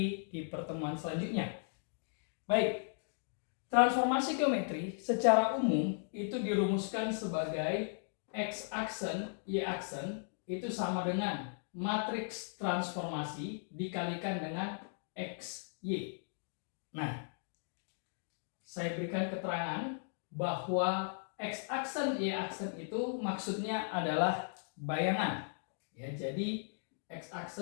di pertemuan selanjutnya. Baik. Transformasi geometri secara umum itu dirumuskan sebagai X-aksen, Y-aksen itu sama dengan matriks transformasi dikalikan dengan XY. Nah, saya berikan keterangan bahwa X-aksen, Y-aksen itu maksudnya adalah bayangan. Ya, jadi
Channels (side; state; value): right; silent; digital silence